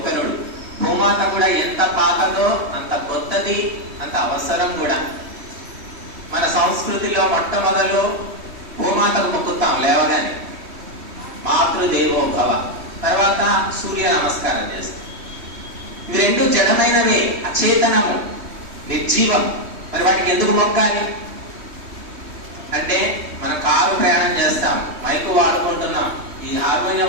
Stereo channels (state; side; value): late; left; 3.1 ms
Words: భూమాత కూడా ఎంత పాతదో అంత కొత్తది, అంత అవసరం కూడా. మన సంస్కృతిలో మొట్టమొదలు భూమాతకు మొక్కుతాం లేవగానే, మాతృదేవోభవ. తర్వాత సూర్య నమస్కారం చేస్తాం. ఇవి రెండు జడమైనవే, అచేతనము, నిర్జీవం. మరి వాటికి ఎందుకు మొక్కాలి అంటే, మనం కారు ప్రయాణం చేస్తాం, మైకు వాడుకుంటున్నాం, ఈ